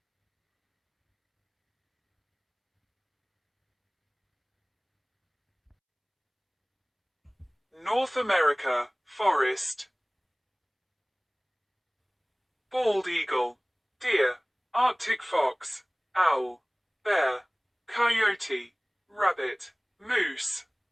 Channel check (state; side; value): identical; both; correlation 1.00